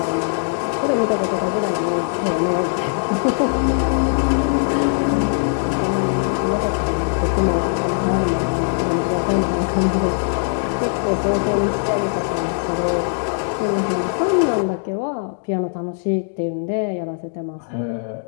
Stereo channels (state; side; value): silent; right; digital silence